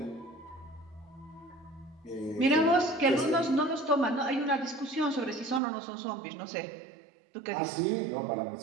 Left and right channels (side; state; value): left; drops out; at 5.6 s